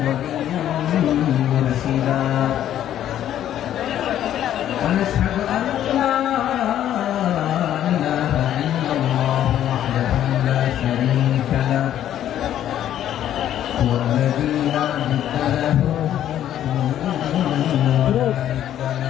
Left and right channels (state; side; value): quieter; right; 11.3 dB